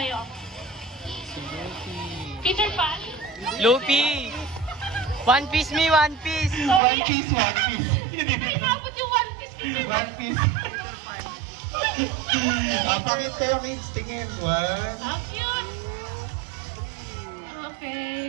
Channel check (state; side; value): drops out; left; at 6.8 s